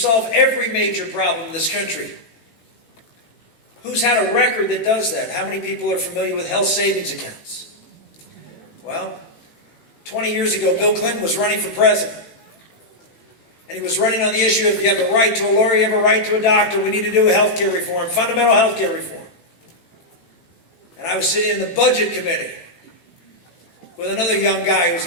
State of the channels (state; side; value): late; right; 18 ms